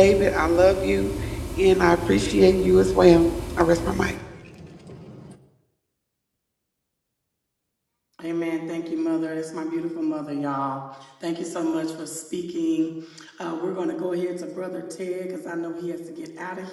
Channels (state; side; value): identical; both; correlation 1.00